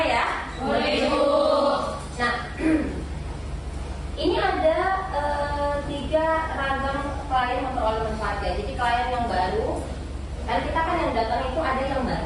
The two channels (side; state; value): both; identical; correlation 1.00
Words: ya? Boleh Ibu. Nah, ini ada 3 ragam klien memperoleh manfaat ya. Jadi klien yang baru, dan kita kan yang datang itu ada yang